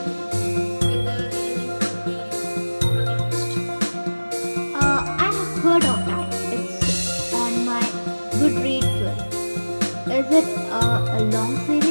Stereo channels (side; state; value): both; inverted; correlation -1.00